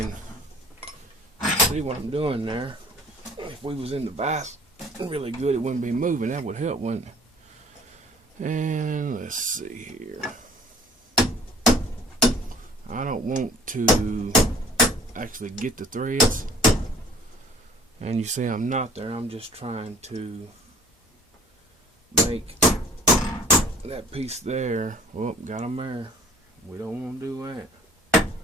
see what I'm doing there. If we was in the vise really good, it wouldn't be moving. That would help, wouldn't it? And let's see here. I don't want to actually get the threads. And you see I'm not there. I'm just trying to make that piece there. Oh, got them there. We don't want to do that.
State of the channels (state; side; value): normal; both; correlation 0.52